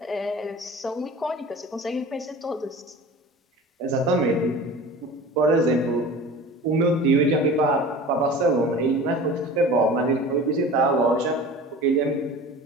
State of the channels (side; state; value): both; normal; correlation 0.38